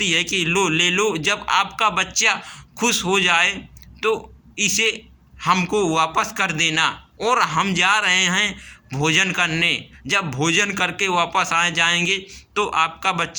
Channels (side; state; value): both; identical; correlation 1.00